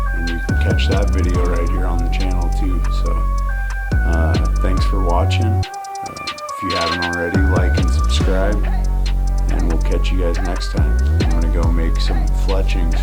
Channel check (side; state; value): both; identical; correlation 1.00